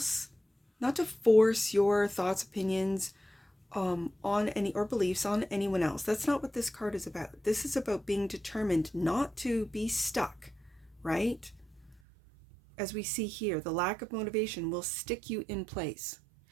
not to force your thoughts, opinions on any, or beliefs on anyone else. That's not what this card is about. This is about being determined not to be stuck, right? As we see here, the lack of motivation will stick you in place.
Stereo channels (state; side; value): drops out; left; at 12.0 s